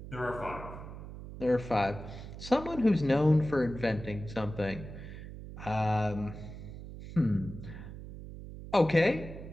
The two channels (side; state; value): right; noise; hum, 12 dB below the sound